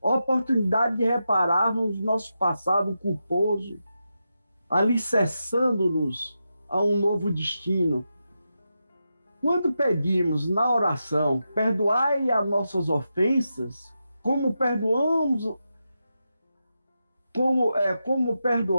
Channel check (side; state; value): both; inverted; correlation -0.88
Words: de repararmos nosso passado culposo, alicerçando-nos a um novo destino. Quando pedimos na oração, perdoai as nossas ofensas, como perdoamos